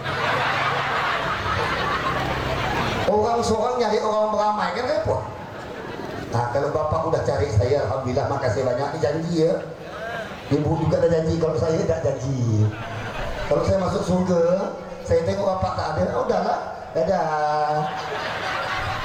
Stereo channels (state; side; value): identical; both; correlation 1.00